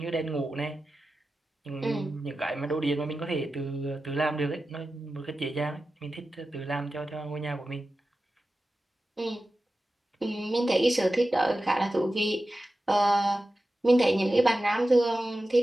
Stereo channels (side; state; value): both; normal; correlation 0.93